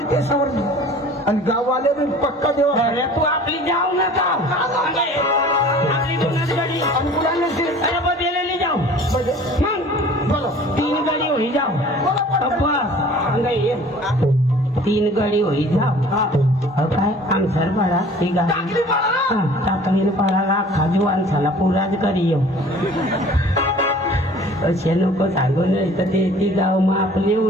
ते समोर आणि गाववाले पण पक्का देवा अरे तू आपली जाऊ नका आपली दोनच गाडी अरे बदलेली जाऊ मग बोलो 3 गाडी होई जाऊ बस 3 गाडी होई जाऊ काय आमसर पडा ती गाडी टाकली पडाला खाजवान झाला पुराच करी येऊ असे नको सांगू नाही तर ते गाव मग आपले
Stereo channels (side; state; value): both; normal; correlation 0.48